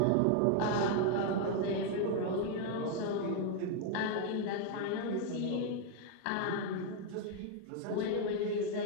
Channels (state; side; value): different; both; correlation 0.00